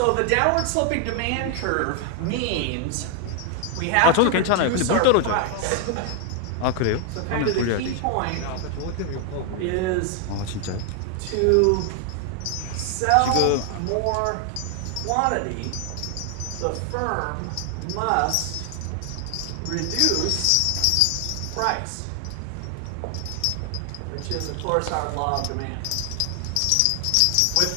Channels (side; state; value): both; different; correlation 0.00